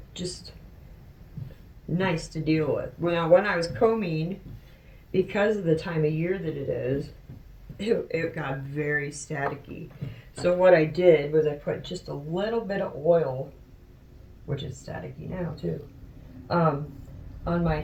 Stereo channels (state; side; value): identical; both; correlation 1.00